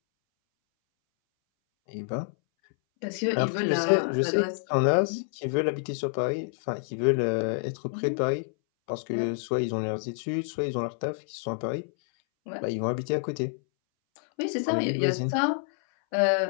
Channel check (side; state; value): right; silent; 60 dB below the other